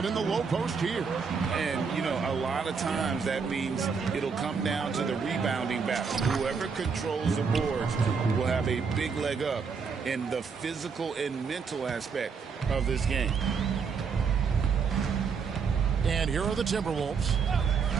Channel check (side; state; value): left; quieter; 5.6 dB